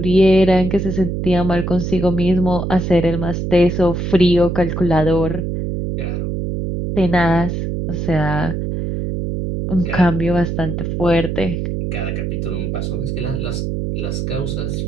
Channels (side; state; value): right; noise; hum, 3 dB below the sound